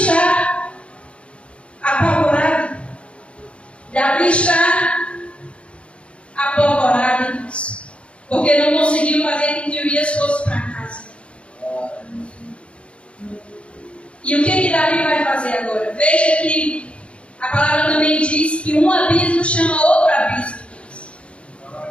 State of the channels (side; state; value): right; late; 0.060 ms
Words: apavorado. Davi está apavorado, irmãos, porque não conseguiu fazer com que Urias fosse para casa. E o que Davi vai fazer agora? Veja que a palavra também diz que um abismo chama outro abismo.